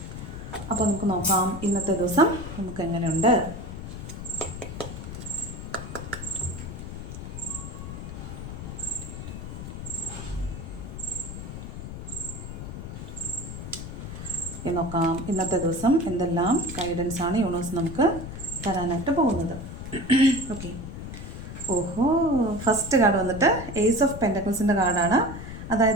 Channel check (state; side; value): noise; left; rumble, 9 dB below the sound